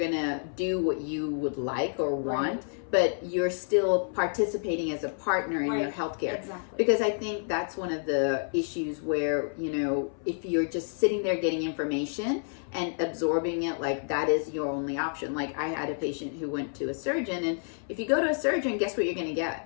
to do what you would like or want, but you're still participating as a partner in your healthcare. Exactly. Because I think that's one of the issues where, if you're just sitting there getting information and absorbing it, like that is your only option. Like I had a patient who went to a surgeon, and if you go to a surgeon, guess what you're going to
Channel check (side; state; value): right; silent; 58 dB below the other